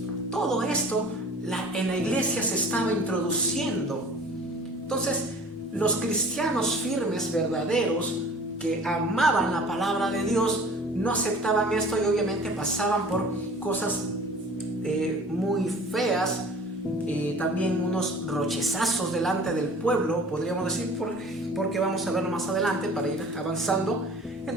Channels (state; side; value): normal; both; correlation 0.46